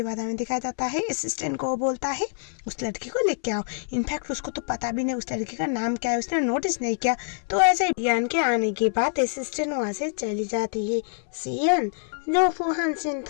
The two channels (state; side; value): silent; right; 61 dB below the other